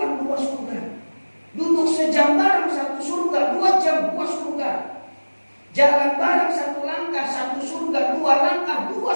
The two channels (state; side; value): inverted; both; correlation -1.00